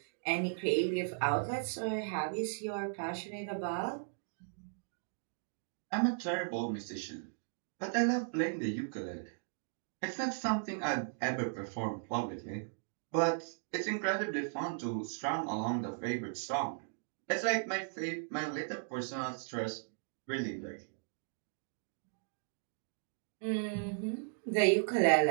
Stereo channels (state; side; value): silent; left; digital silence